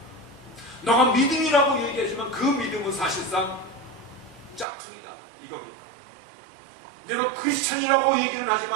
너가 믿음이라고 얘기하지만 그 믿음은 사실상 짝퉁이다 이겁니다. 내가 크리스찬이라고 얘기는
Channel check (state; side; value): drops out; left; at 4.7 s